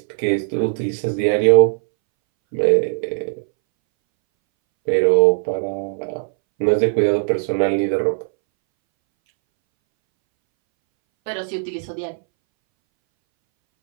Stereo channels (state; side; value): silent; left; 65 dB below the other